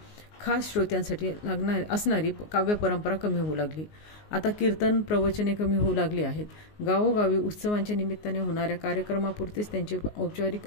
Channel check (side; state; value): right; late; 19 ms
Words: खास श्रोत्यांसाठी असणारी काव्य परंपरा कमी होऊ लागली। आता कीर्तन, प्रवचने कमी होऊ लागली आहेत। गावोगावी उत्सवांच्या निमित्ताने होणाऱ्या कार्यक्रमापुरतेच त्यांचे औपचारिक